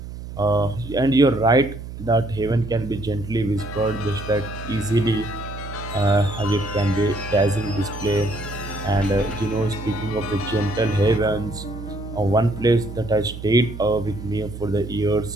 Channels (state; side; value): noise; right; hum, 11 dB below the sound